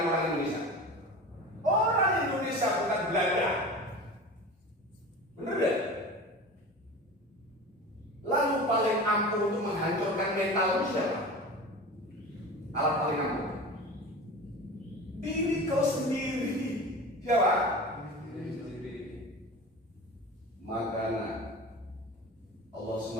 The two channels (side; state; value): both; normal; correlation 0.33